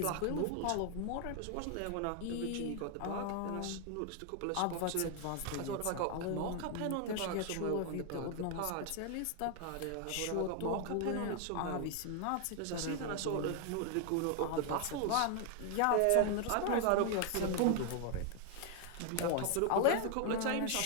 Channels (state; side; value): different; both; correlation 0.00